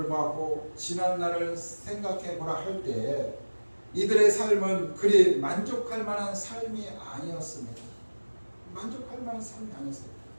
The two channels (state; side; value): inverted; both; correlation -1.00